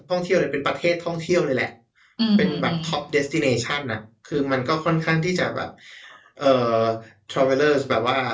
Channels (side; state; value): both; identical; correlation 1.00